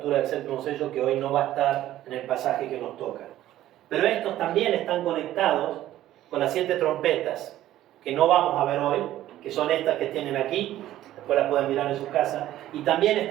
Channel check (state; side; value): quieter; left; 13.6 dB